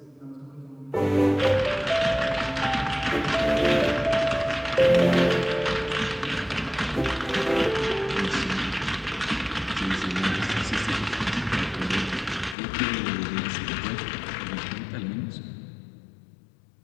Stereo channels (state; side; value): drops out; right; at 12.6 s